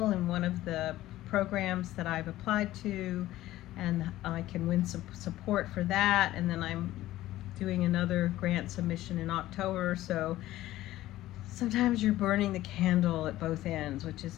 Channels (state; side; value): quieter; right; 15.3 dB